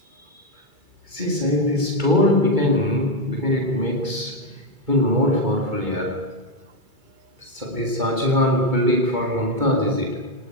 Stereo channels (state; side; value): late; left; 2.3 ms